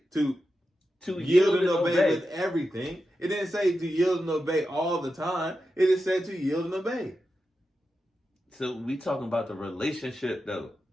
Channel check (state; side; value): normal; both; correlation 0.90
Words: to yield and obey with everything. It didn't say to yield and obey all the time. It just said to yield and obey. So we talking about the relationship though.